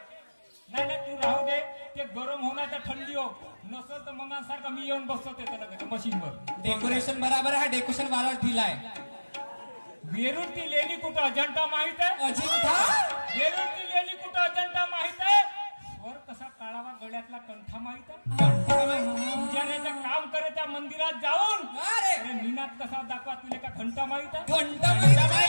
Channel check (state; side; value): inverted; both; correlation -1.00